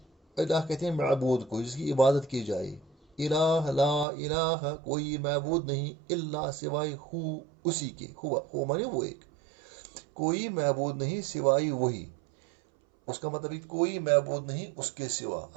الہ کہتے ہیں معبود کو جس کی عبادت کی جائے. الہ لا الہ کوئی معبود نہیں، الا سوائے ہو اسی کے، ہوا مانے وہ ایک، کوئی معبود نہیں سوائے وہی. اس کا مطلب کوئی معبود نہیں اس کے سوا،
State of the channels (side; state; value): left; drops out; at 4.0 s